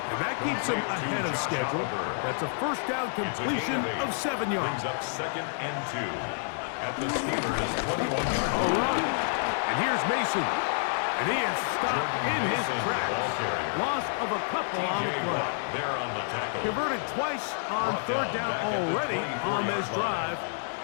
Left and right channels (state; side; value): silent; right; 59 dB below the other